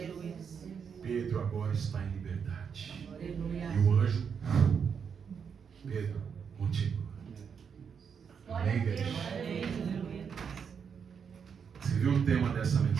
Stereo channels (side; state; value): left; quieter; 6.8 dB